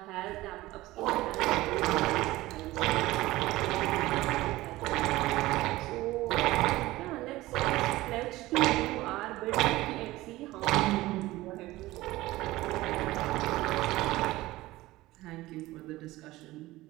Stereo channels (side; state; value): left; quieter; 18.1 dB